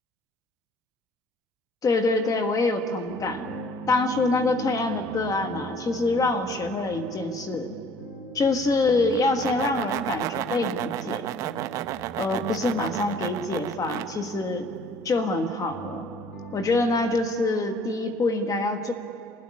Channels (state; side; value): normal; both; correlation 0.55